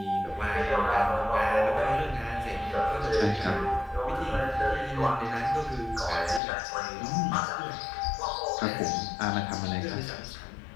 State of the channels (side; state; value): right; drops out; at 6.4 s